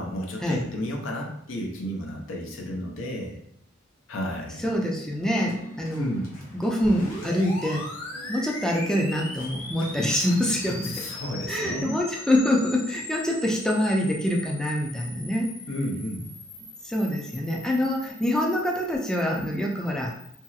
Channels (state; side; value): normal; both; correlation 0.75